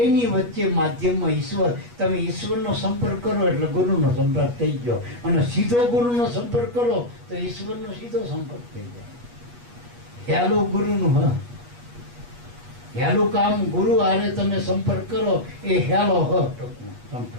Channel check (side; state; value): left; late; 8.3 ms